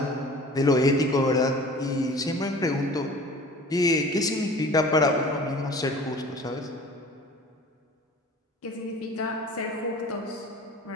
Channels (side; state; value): both; normal; correlation 0.44